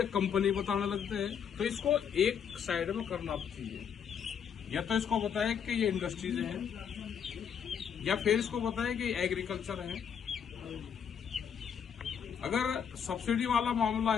कंपनी बताने लगते हैं। तो इसको एक साइड में करना चाहिए, या तो इसको बताए कि ये इंडस्ट्रीज हैं, या फिर इसको बताए कि एग्रीकल्चर है। अगर सब्सिडी वाला मामला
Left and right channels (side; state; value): right; quieter; 7.7 dB